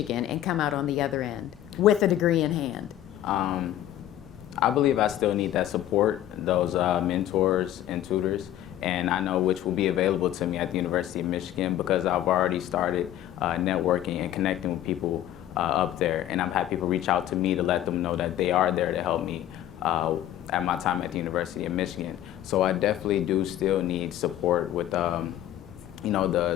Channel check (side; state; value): right; quieter; 12.4 dB